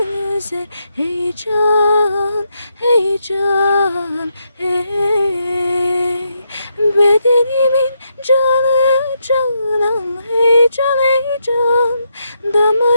heyecan heyecan hey. Bedenimin canı canan heyecan heyecan,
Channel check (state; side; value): inverted; both; correlation -0.80